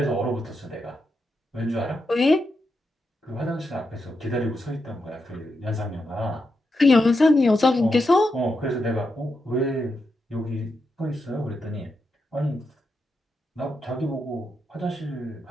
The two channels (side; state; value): both; normal; correlation 0.85